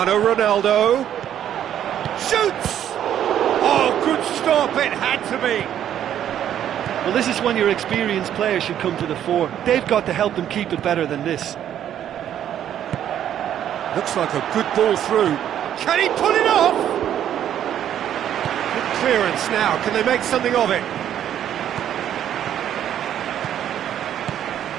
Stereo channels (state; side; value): quieter; left; 10.5 dB